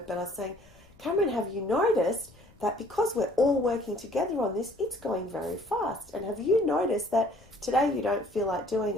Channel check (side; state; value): left; noise; rumble, 27 dB below the sound